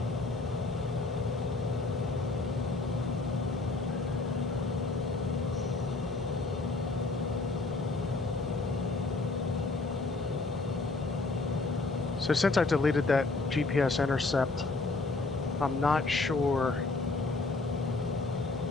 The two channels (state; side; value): quieter; right; 3.6 dB